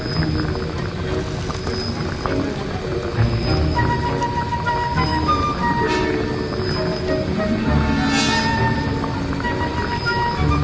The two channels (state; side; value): identical; both; correlation 1.00